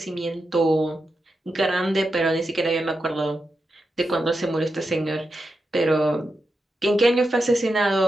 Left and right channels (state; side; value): normal; both; correlation 0.88